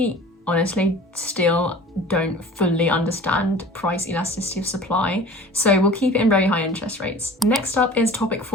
honestly still don't fully understand price elasticity of supply, so we'll keep it in very high interest rates. Next up is topic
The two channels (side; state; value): both; normal; correlation 0.42